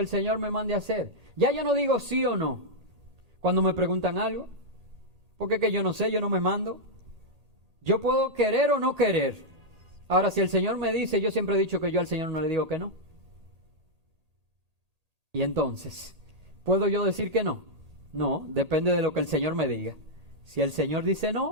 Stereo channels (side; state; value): left; late; 1.8 ms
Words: Señor me mande a hacer. Ya yo no digo sí o no cuando me preguntan algo, porque es que yo no sé, yo no me mando. Yo puedo querer o no querer. Ahora, si el Señor me dice, yo siempre he dicho que yo al Señor no le digo que no. Y entonces, ¿puedo yo decir que no? No, depende de lo que el Señor me diga. Si el Señor dice